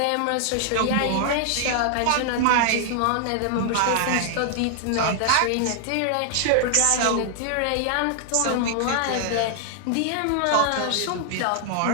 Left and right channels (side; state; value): both; different; correlation 0.00